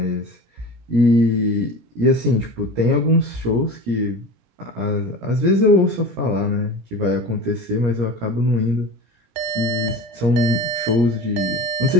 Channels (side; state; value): left; late; 17 ms